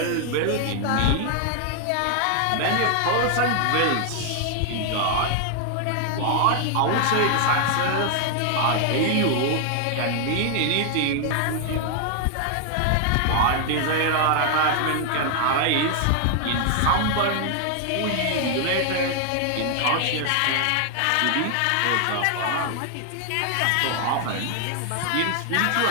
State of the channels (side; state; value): both; different; correlation 0.00